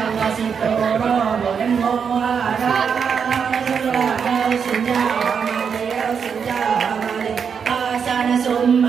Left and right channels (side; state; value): left; quieter; 6.6 dB